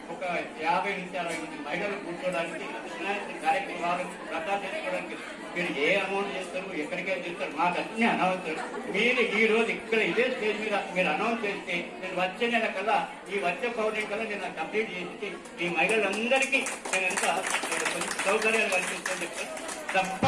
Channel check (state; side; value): identical; both; correlation 1.00